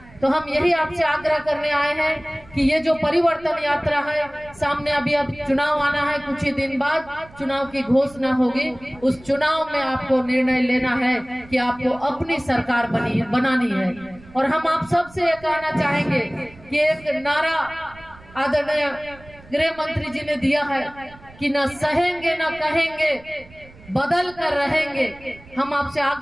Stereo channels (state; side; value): noise; right; rumble, 23 dB below the sound